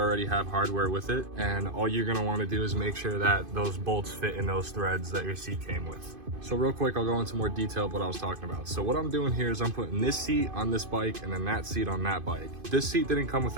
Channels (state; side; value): late; left; 2.5 ms